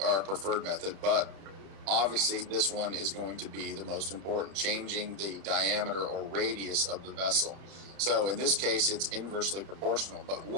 our preferred method, but obviously this one is going to be the most important, changing the diameter or radius of the vessel. So in this case, it's inversely proportional. But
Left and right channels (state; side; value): late; left; 31 ms